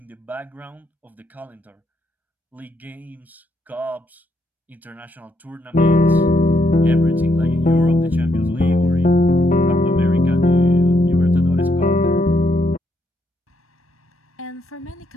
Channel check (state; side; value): normal; both; correlation 0.76